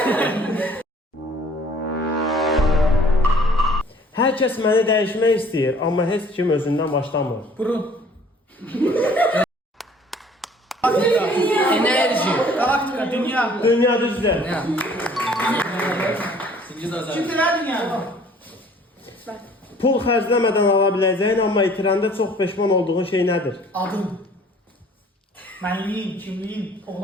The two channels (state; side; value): normal; both; correlation 0.55